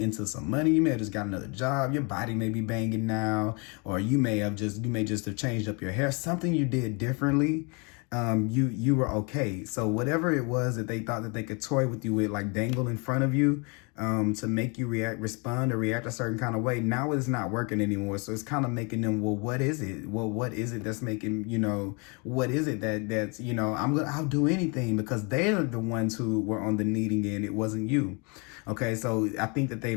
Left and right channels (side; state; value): right; quieter; 32.6 dB